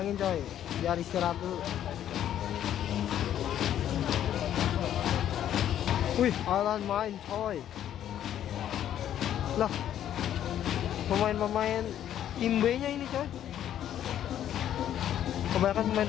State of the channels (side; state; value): right; quieter; 10.8 dB